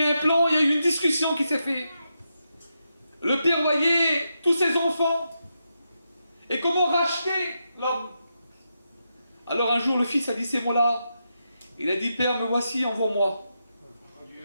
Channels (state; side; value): inverted; both; correlation -0.85